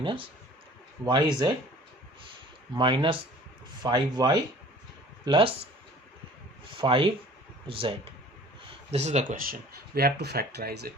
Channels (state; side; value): normal; both; correlation 0.49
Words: yz minus 5y plus 5z. This is the question. We have to factorize it.